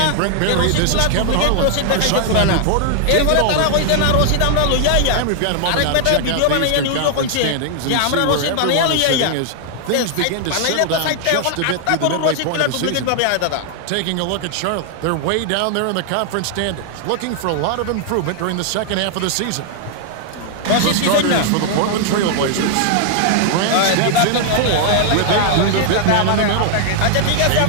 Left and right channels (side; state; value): both; different; correlation 0.00